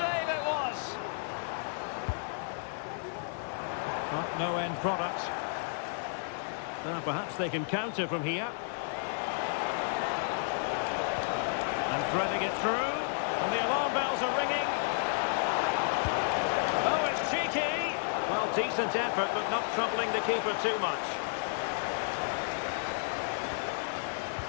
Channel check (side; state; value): right; silent; digital silence